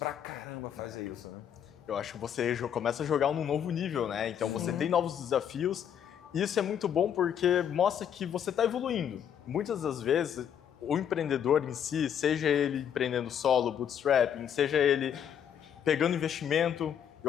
caramba fazer isso, né? Eu acho que você começa a jogar num novo nível, né? Então você tem novos desafios. E isso é muito bom porque mostra que você está evoluindo. Muitas das vezes, o empreendedor em si, seja ele empreendendo solo, bootstrapping, seja ele pegando investimento,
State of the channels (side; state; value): right; quieter; 8.9 dB